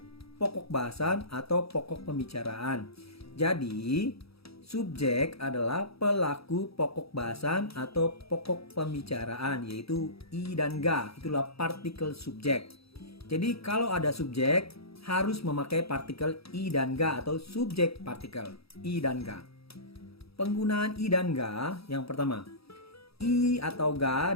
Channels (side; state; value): right; late; 0.77 ms